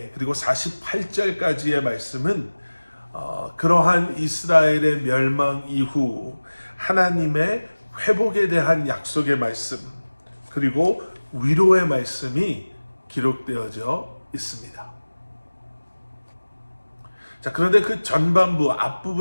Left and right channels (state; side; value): inverted; both; correlation -1.00